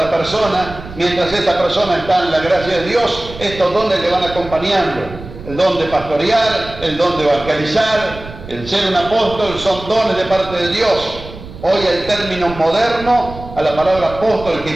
persona. Mientras esta persona está en la gracia de Dios, estos dones le van acompañando. El don de pastorear, el don de evangelizar, el ser un apóstol, son dones de parte de Dios. Hoy el término moderno a la palabra apóstol,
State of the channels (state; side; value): noise; right; rumble, 14 dB below the sound